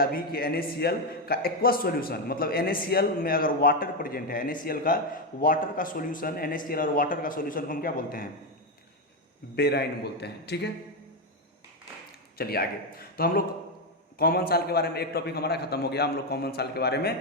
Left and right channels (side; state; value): both; normal; correlation 0.08